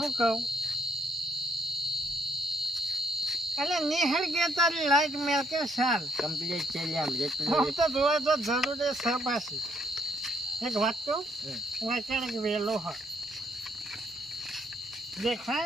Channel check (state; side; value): normal; both; correlation 0.70